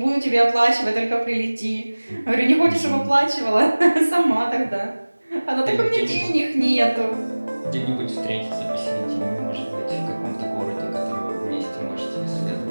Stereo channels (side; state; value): both; inverted; correlation -1.00